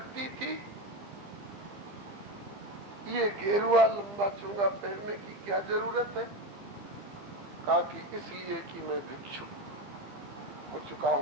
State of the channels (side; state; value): left; late; 15 ms